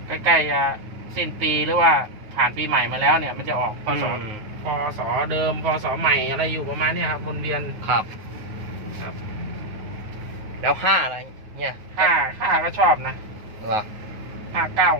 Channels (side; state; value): left; late; 9.4 ms